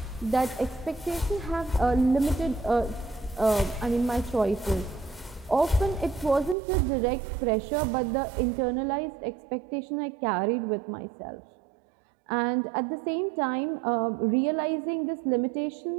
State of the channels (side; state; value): left; drops out; at 6.6 s